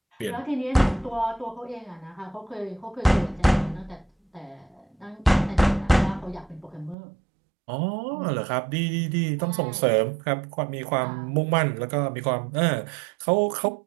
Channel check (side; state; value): left; drops out; at 7.0 s